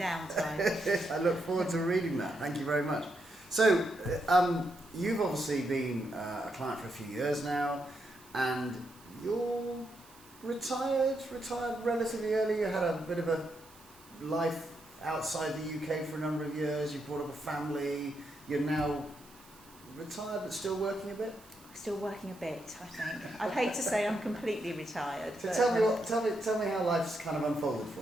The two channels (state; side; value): noise; right; hiss, 24 dB below the sound